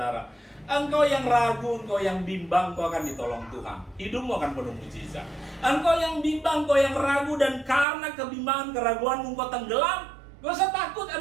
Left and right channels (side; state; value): left; drops out; at 7.9 s